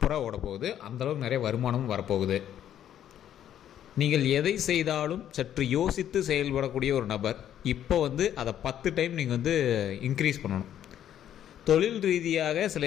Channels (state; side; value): quieter; right; 10.6 dB